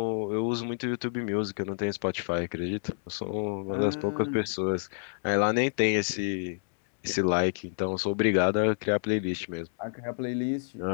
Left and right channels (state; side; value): silent; right; digital silence